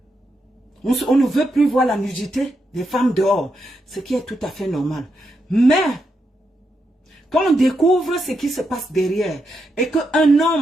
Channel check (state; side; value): normal; both; correlation 0.83